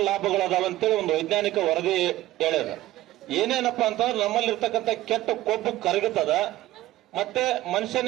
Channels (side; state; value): left; quieter; 15.8 dB